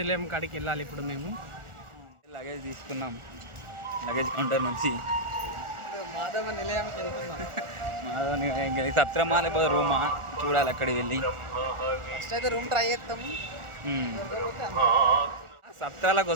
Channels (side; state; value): left; late; 1.4 ms